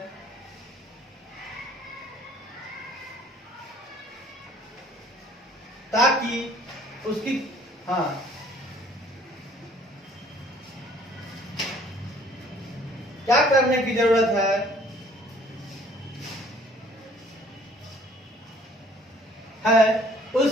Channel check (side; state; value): both; normal; correlation 0.56